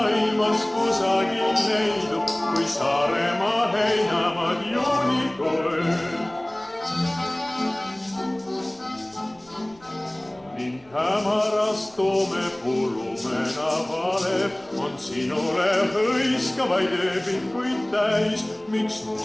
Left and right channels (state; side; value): noise; right; rumble, 28 dB below the sound